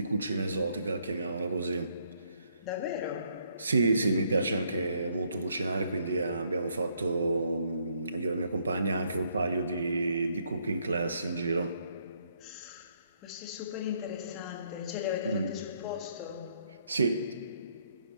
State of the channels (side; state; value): both; inverted; correlation -0.70